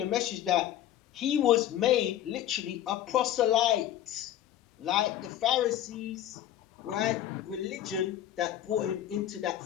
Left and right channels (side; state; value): right; quieter; 12.0 dB